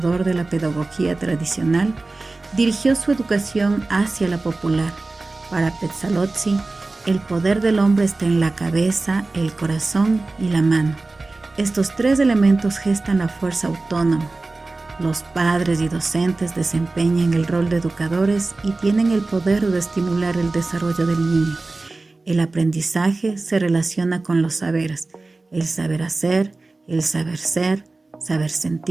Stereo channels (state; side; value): quieter; left; 3.3 dB